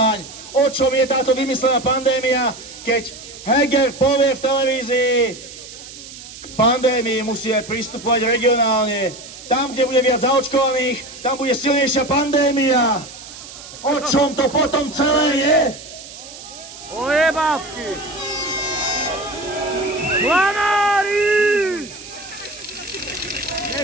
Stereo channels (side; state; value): right; noise; hiss, 15 dB below the sound